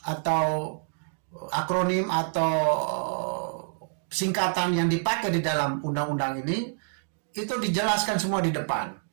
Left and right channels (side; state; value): left; silent; digital silence